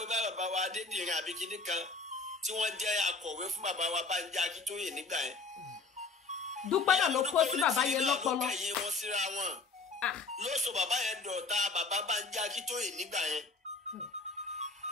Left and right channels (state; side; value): quieter; right; 4.0 dB